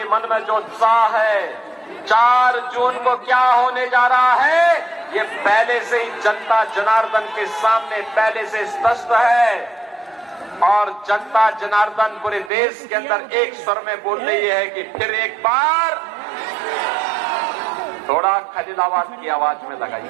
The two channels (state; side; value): drops out; left; at 12.5 s